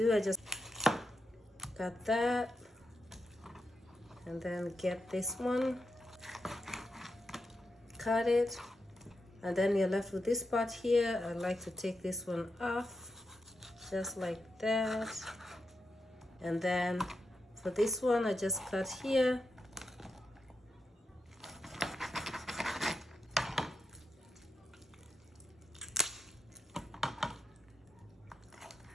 I just cut that, and then get this one, cut it. And then you're left with this part here. I like to take this one off, just like that. And then for this one, I just cut here.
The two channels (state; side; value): normal; both; correlation 0.86